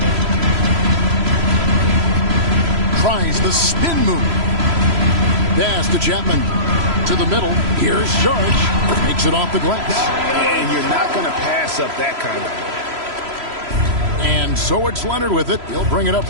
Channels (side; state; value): left; late; 3.0 ms